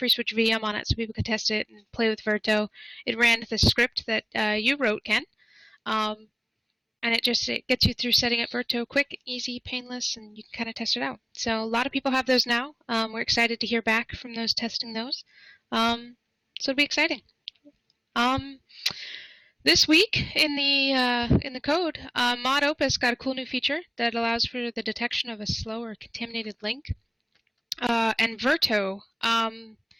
VM on it so people could test it and play with Verto. It ran the script that you wrote, Ken, and it gets you through setting up Verto quick, easy, painless, and you can kind of test it out. So a lot of people have those now. We're excited to hear back from those testing those. So it'll be exciting. This week in the code, Mod Opus got a cool new feature that allows for the detection of a slow or contaminated link. And Verto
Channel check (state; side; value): identical; both; correlation 1.00